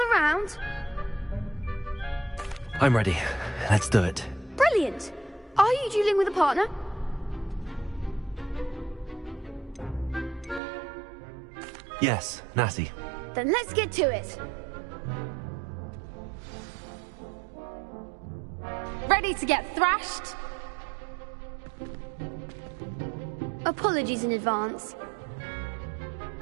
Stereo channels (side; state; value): left; drops out; at 10.6 s